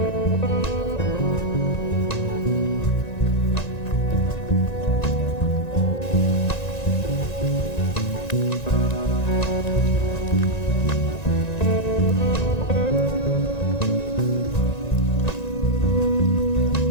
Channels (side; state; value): right; late; 1.9 ms